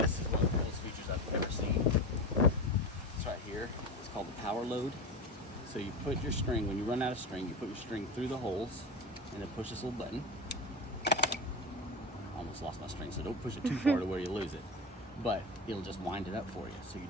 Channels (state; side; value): normal; both; correlation 0.24